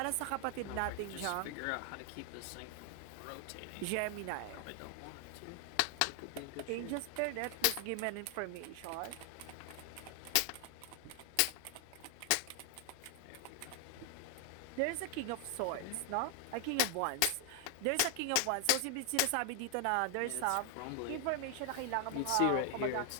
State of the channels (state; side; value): different; both; correlation 0.00